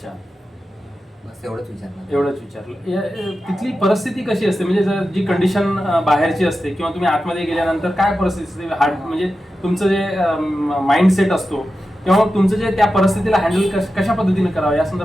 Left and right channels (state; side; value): normal; both; correlation 0.92